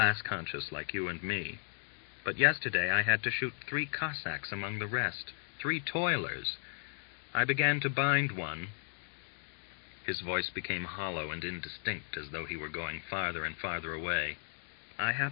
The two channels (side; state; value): right; silent; digital silence